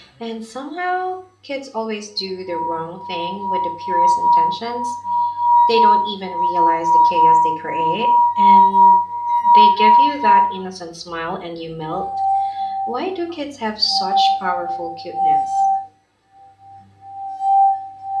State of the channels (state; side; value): identical; both; correlation 1.00